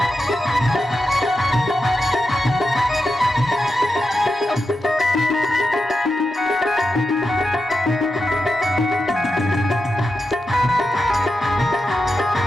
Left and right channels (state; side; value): normal; both; correlation 0.88